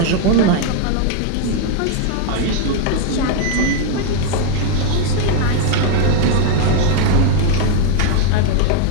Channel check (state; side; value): different; both; correlation 0.00